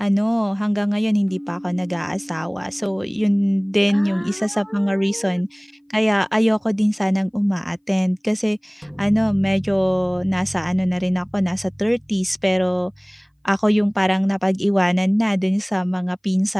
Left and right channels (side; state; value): both; identical; correlation 1.00